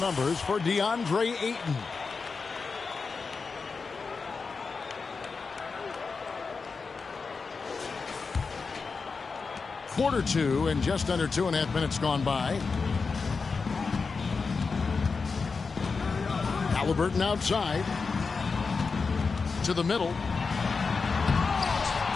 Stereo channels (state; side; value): quieter; right; 4.7 dB